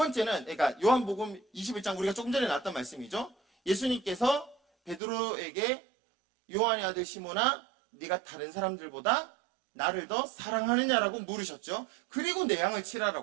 그러니까 요한복음 21장 우리가 조금 전에 나왔던 말씀이죠. 예수님께서 베드로에게 요한의 아들 시몬아, 네가 다른 사람들보다 나를 더 사랑하느냐라고 물으셨죠. 그리고 내 양을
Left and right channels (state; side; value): drops out; left; at 5.0 s